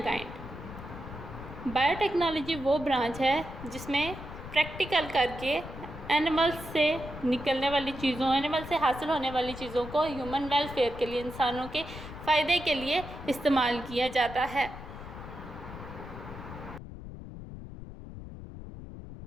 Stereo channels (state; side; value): noise; left; rumble, 12 dB below the sound